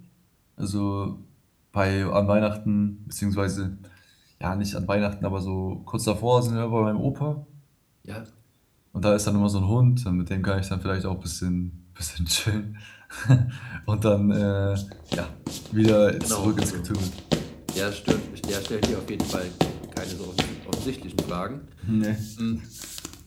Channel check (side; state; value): both; identical; correlation 1.00